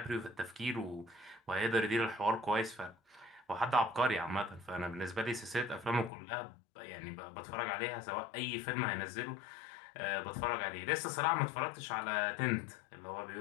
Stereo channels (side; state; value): right; drops out; at 6.1 s